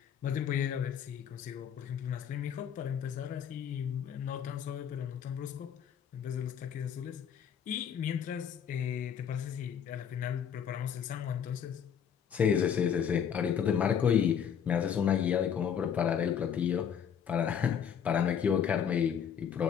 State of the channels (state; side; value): quieter; right; 8.2 dB